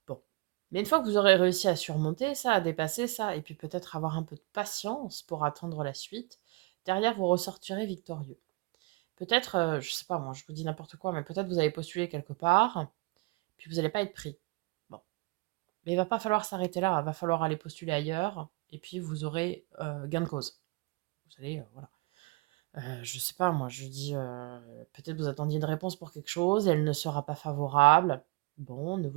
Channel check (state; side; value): quieter; left; 25.2 dB